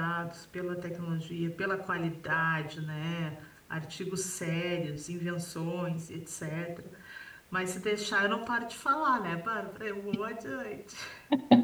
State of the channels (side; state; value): both; identical; correlation 1.00